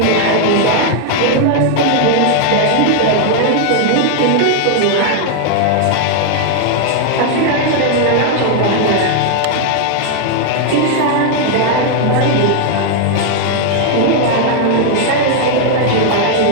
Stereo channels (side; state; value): both; different; correlation 0.00